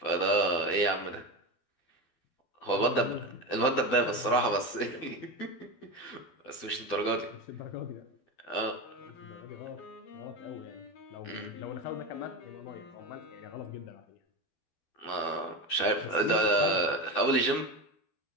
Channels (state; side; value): late; right; 12 ms